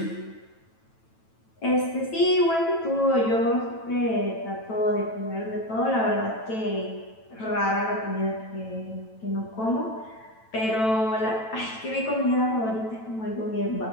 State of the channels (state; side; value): late; right; 9.0 ms